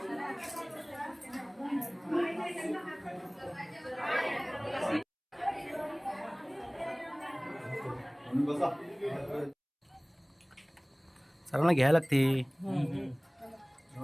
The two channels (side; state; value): both; identical; correlation 1.00